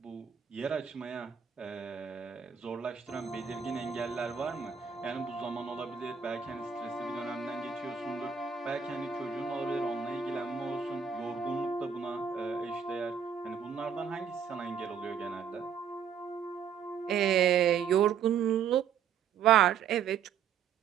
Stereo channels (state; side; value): quieter; left; 7.4 dB